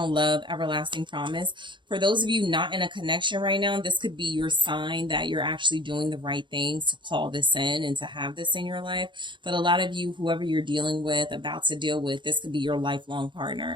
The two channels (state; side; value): late; left; 0.23 ms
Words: love, everlasting promise. For those of you not in a connection right now, this could be your sign that you're actually doing the right things to call this in and to have this in your life. But a lot of you, whoever you're dealing with, about to deal with, this could be your lifelong